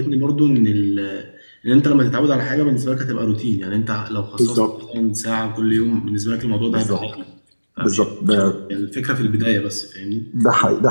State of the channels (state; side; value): inverted; both; correlation -1.00